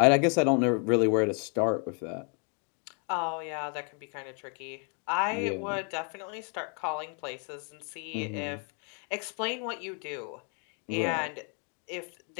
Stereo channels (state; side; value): quieter; right; 39.5 dB